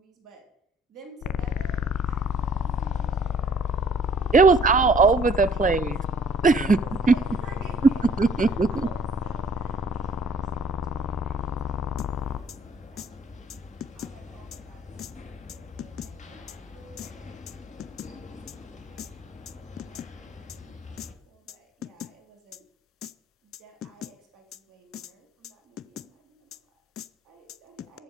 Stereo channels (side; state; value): both; normal; correlation 0.58